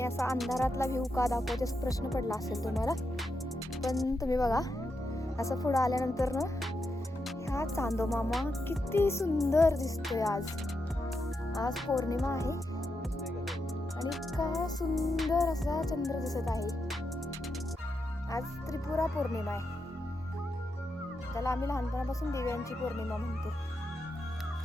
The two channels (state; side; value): normal; both; correlation 0.85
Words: असा अंधारातला व्ह्यू का दाखवते असं प्रश्न पडला असेल तुम्हाला, पण तुम्ही बघा असं पुढं आल्यानंतर ना ह्या चांदोमामा किती सुंदर दिसतोय. आज पौर्णिमा आहे आणि इतका सुंदर असा चंद्र दिसत आहे. आज त्रिपुरा पौर्णिमा आहे, त्याला आम्ही लहानपणापासून दिव्यांची पौर्णिमा म्हणतो.